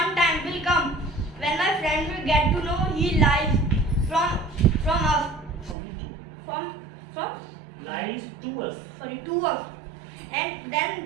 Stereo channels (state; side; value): drops out; left; at 5.8 s